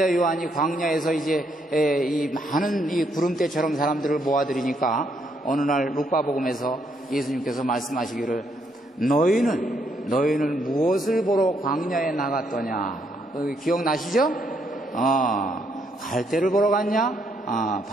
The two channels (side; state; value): both; normal; correlation 0.74